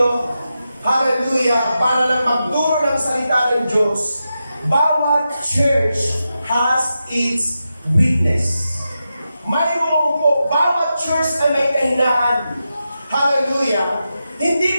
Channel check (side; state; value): both; inverted; correlation -0.89